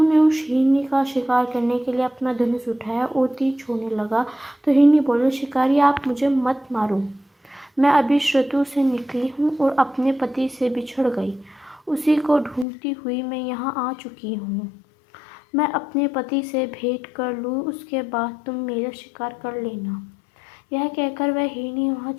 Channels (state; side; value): drops out; right; at 12.7 s